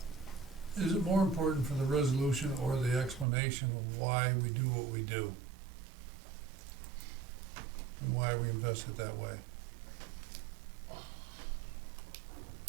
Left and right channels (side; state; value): left; drops out; at 3.2 s